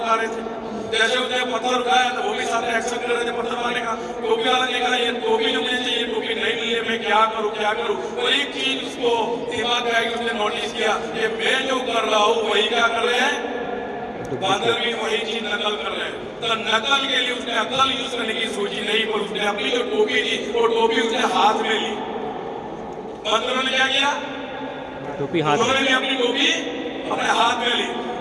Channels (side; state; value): both; identical; correlation 1.00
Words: उठा रहे थे। जैसे उसने पत्थर उठाया तो वो भी सामने एक्शन कर रहे थे पत्थर मारने का। टोपी वाला ने कहा ये टोपी जो मुझे चाहिए, टोपी नहीं मिली है, मैं क्या करूं क्या करूं। तो एक चीज उसको दिमाग में आई, उसने नोटिस किया कि मैं जो कर रहा हूँ वही क्या कर रहे हैं, बांदर भी वही चीज नकल कर रहे हैं। तो नकल के लिए उसने अकल यूज करने की सोची नहीं, पर उसने अपनी जो टोपी थी वो टोपी उसने हाथ में ली। बंदरों ने क्या किया, टोपी हाथ, उन्होंने भी अपनी टोपी अपने हाथ में ली